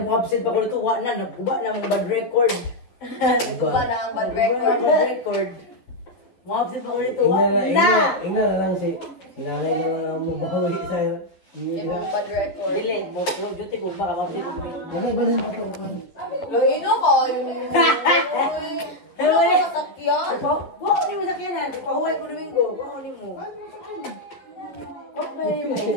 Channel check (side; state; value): right; late; 11 ms